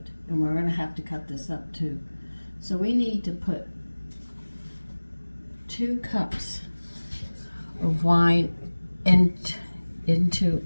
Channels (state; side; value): inverted; both; correlation -1.00